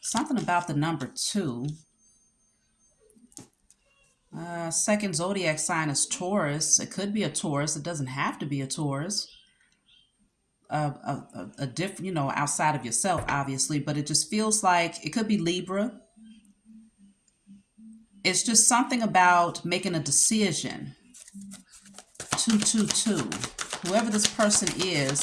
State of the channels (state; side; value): identical; both; correlation 1.00